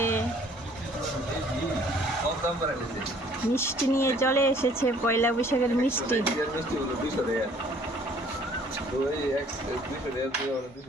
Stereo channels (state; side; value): normal; both; correlation 0.57